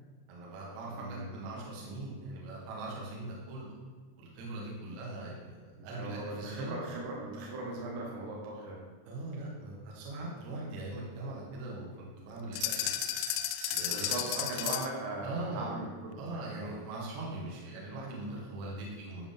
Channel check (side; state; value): left; late; 30 ms